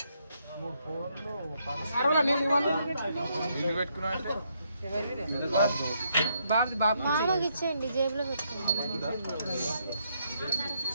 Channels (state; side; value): inverted; both; correlation -0.75